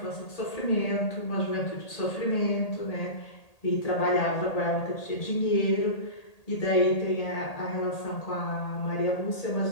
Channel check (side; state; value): right; late; 1.8 ms